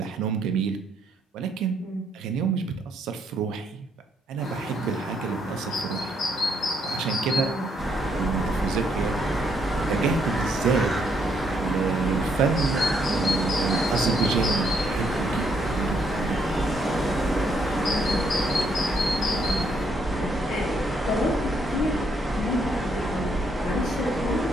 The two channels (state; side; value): normal; both; correlation 0.73